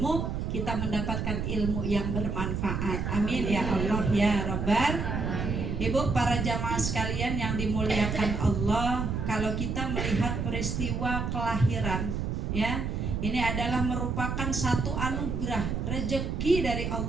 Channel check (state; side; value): noise; right; rumble, 2 dB below the sound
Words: kita mendapatkan ilmu yang bermanfaat. Amin ya Allah ya Rabbal. Ibu, para jamaah sekalian yang dimuliakan Allah, kalau kita melihat peristiwa kelahiran ya, ini adalah merupakan satu anugerah, rezeki dari